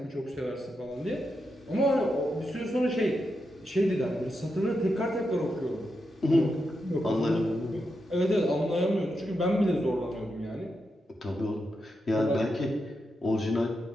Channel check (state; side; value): normal; both; correlation 0.86